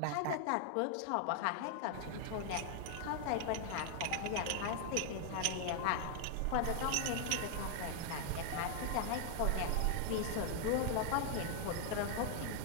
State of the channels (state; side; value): different; both; correlation 0.00